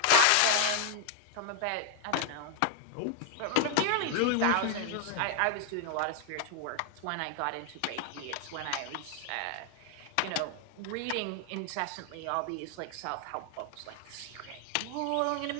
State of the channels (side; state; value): both; different; correlation 0.00